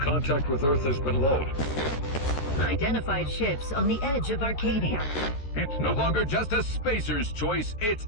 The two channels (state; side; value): late; right; 13 ms